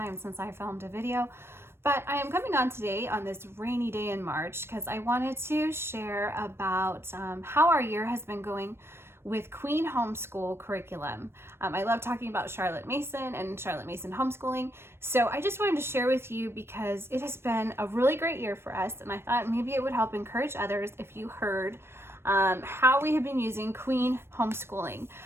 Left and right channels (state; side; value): late; left; 0.12 ms